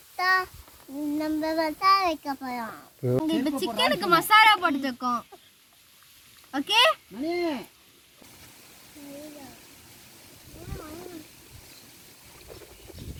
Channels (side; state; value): both; identical; correlation 1.00